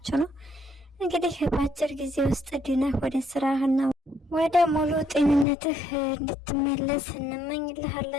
ነው። እንግዲህ በአጭር ጊዜ ውስጥ ድነህ ወደ ስራህና ወደ ሙሉ ጤንነትህ እንድትመለስ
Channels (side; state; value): right; drops out; at 5.5 s